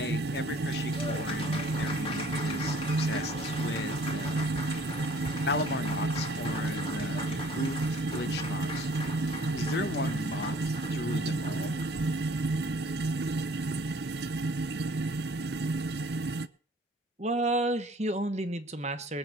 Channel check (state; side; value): normal; both; correlation 0.55